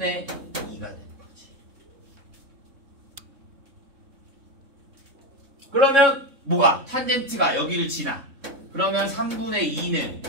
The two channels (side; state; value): left; late; 3.6 ms